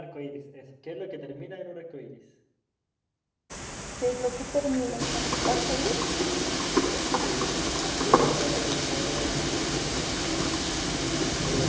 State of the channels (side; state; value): both; identical; correlation 1.00